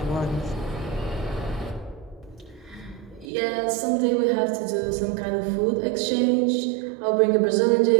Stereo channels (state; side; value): drops out; left; at 3.2 s